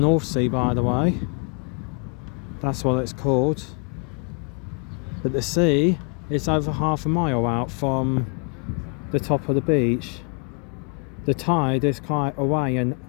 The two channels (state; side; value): quieter; right; 38.2 dB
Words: Sea, by the way. That's what it's called. But the sea is over half a mile out from the top of the beach. The tide is quite away and